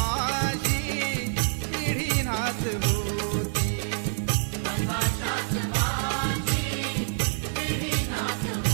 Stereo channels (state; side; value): silent; left; digital silence